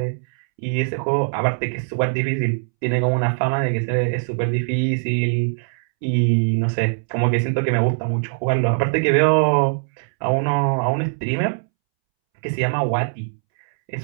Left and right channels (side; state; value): left; silent; 65 dB below the other